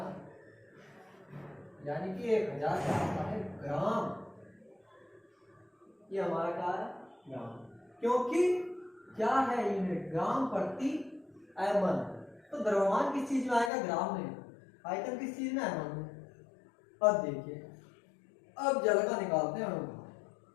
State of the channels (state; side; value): drops out; right; at 13.7 s